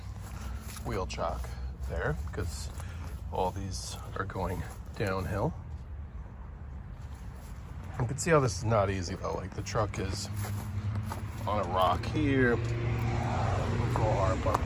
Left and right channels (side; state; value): both; identical; correlation 1.00